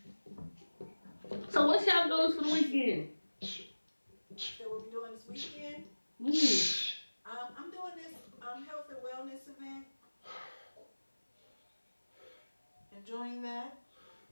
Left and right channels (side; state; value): both; inverted; correlation -1.00